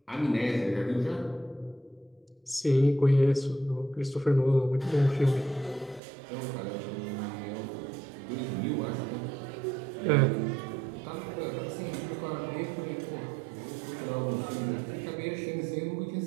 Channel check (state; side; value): drops out; left; at 6.0 s